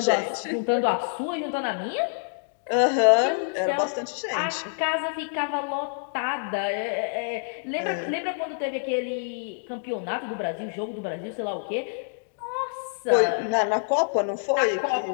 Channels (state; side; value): silent; right; digital silence